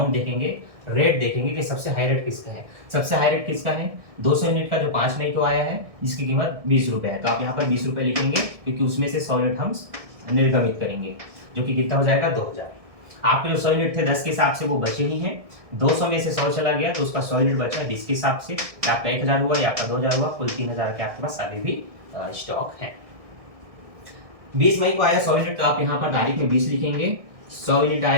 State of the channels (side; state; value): left; late; 1.6 ms